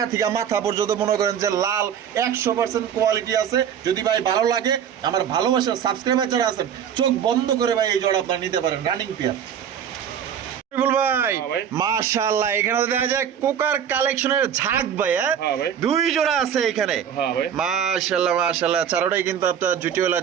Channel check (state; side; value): quieter; left; 8.7 dB